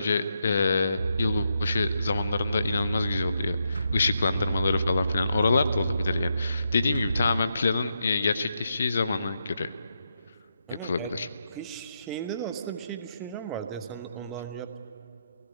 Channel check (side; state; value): both; inverted; correlation -0.82